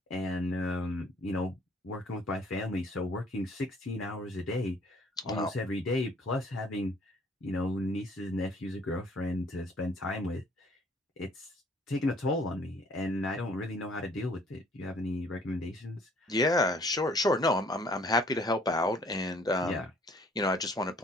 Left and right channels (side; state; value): both; normal; correlation 0.59